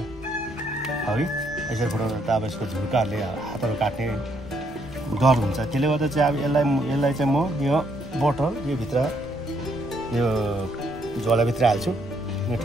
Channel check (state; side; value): normal; both; correlation 0.72